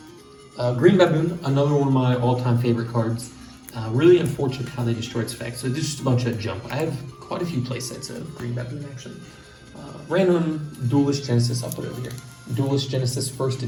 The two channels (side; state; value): both; identical; correlation 1.00